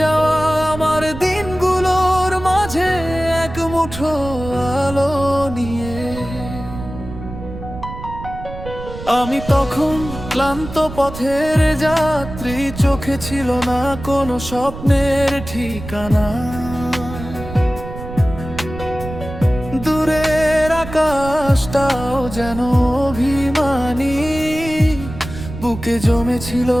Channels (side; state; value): right; noise; rumble, 11 dB below the sound